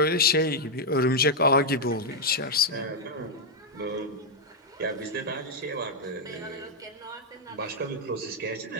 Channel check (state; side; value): normal; both; correlation -0.01